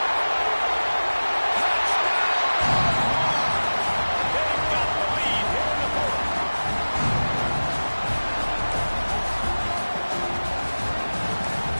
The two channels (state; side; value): inverted; both; correlation -1.00